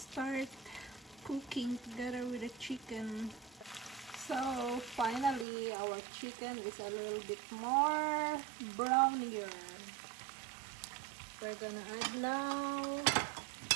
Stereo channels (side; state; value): left; drops out; at 5.5 s